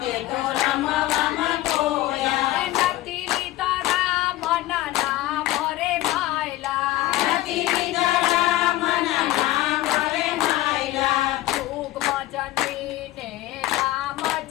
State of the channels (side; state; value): right; quieter; 16.1 dB